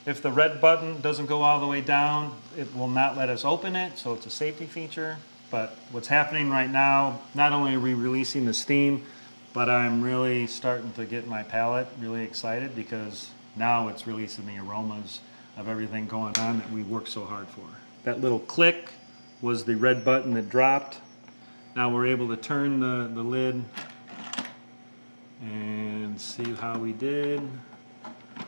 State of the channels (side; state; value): both; inverted; correlation -1.00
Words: If the red button doesn't go all the way down, it will not let us open it, so it's a safety feature. But what's happening right now, not only are we releasing the steam, but I'm really starting to get my palate really excited because now it's releasing the aromas of everything going on that we worked so hard for. That little click was the red button that dropped. Now we're able to turn the lid and see how we did.